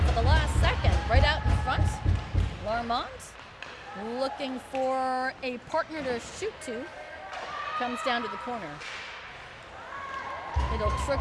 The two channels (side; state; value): both; identical; correlation 1.00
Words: at the last second. Right out in front, Larmont looking for a partner to shoot to. Comes down to the corner. It'll